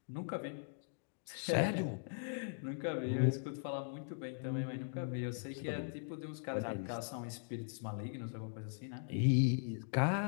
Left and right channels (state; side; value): silent; right; digital silence